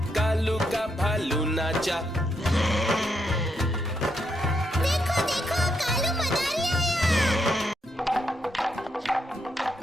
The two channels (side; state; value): both; normal; correlation 0.79